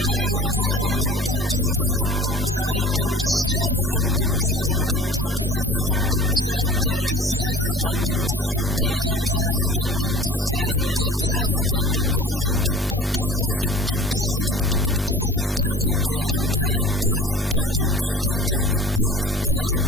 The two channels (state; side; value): normal; both; correlation 0.44